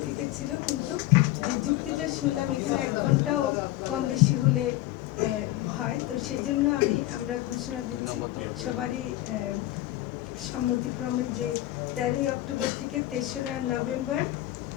থেকে ছিল, কিন্তু যে যুক্তিটা শুনলাম এখানে 1 ঘন্টাও কম বেশি হলে হয়, তো সেজন্য আমরা ঘোষণা দিচ্ছি সবারই সম্মতিক্রমে যে 13ই অক্টোবর থেকে 3রা নভেম্বর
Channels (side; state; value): right; quieter; 16.1 dB